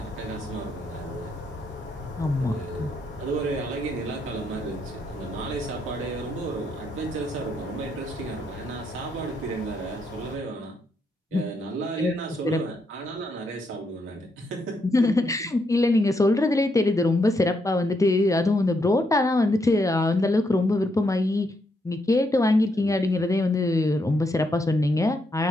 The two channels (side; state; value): both; normal; correlation 0.77